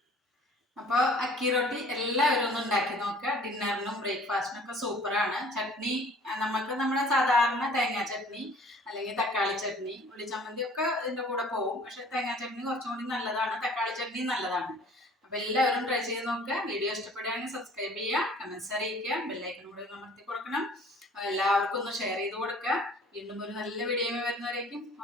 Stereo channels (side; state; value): both; normal; correlation 0.52